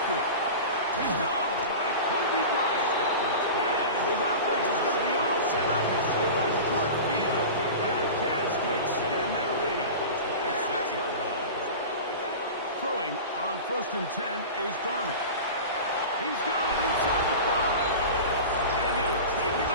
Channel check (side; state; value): both; inverted; correlation -0.31